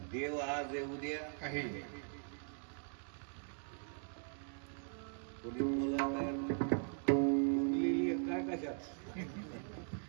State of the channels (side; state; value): left; silent; 51 dB below the other